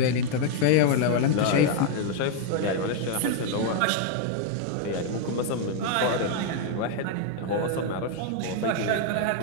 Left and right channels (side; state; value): both; different; correlation 0.00